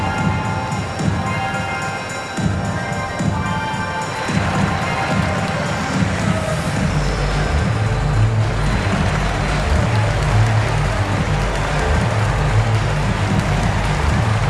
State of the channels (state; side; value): identical; both; correlation 1.00